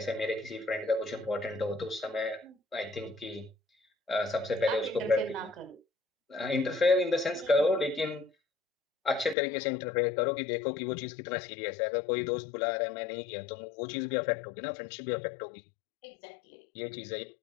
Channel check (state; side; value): drops out; right; at 9.3 s